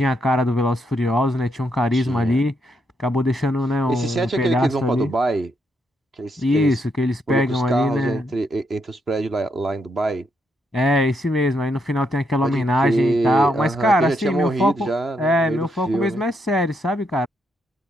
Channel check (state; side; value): normal; both; correlation 0.78